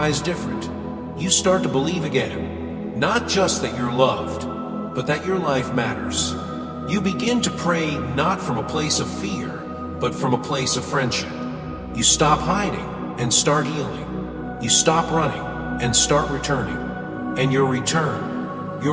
different. You start to believe again, not just that you're loved, but that your life matters. You begin to pray not from a place of fear, but from a place of friendship. You stop hiding and start healing. You stop running and start returning. And your return,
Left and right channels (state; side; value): identical; both; correlation 1.00